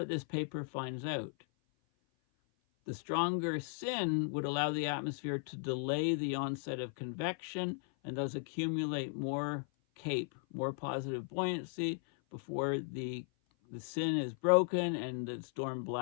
this paper finds out. The stronger SIN would allow the atmosphere to delay the onset of convection and thus accumulate more CAPE, more positive buoyancy, before the sin is broken and the storm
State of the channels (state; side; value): silent; right; 53 dB below the other